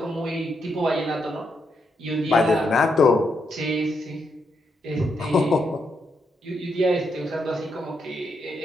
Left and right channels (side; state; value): both; normal; correlation 0.80